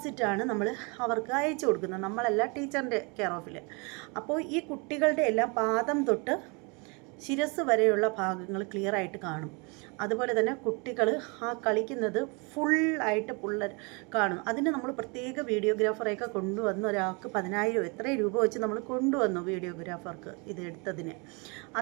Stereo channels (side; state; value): left; quieter; 31.1 dB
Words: നമ്മൾ അവർക്ക് അയച്ചു കൊടുക്കുന്നത്. നമ്മളല്ല, ടീച്ചറിൻ്റെ കെയർ ഓഫിൽ. അപ്പോൾ ഈ കുട്ടികളുടെ എല്ലാം പാദം തൊട്ട് ശിരസ് വരെയുള്ള ഭാഗങ്ങൾ ക്ലിയറായിട്ട് കാണും. അതുപോലെ തന്നെ കുട്ടികൾ ആ കളിക്കുന്നത് ഫുള്ളായിട്ട് കാണും. അതിന് നമ്മൾ പ്രത്യേക വീഡിയോഗ്രാഫറെയൊക്കെ കൊണ്ടുവന്ന് ഒരാൾക്ക് 10,000 എത്രയും രൂപ വെച്ച് നമ്മൾ കൊണ്ടുവന്നു വീഡിയോഗ്രാഫർക്ക് ഇത് എടുത്തതിന്.